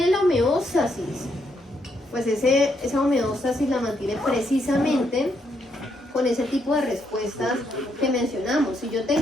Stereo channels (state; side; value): normal; both; correlation 0.76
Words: la homeostasis, pues esa homeostasis la mantiene precisamente con ese tipo de respuestas que mencionamos. Si yo